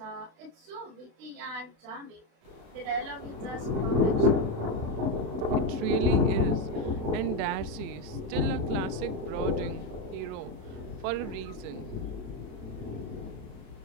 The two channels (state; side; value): late; left; 36 ms